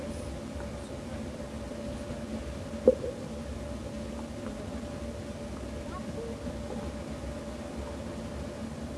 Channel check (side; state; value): both; identical; correlation 1.00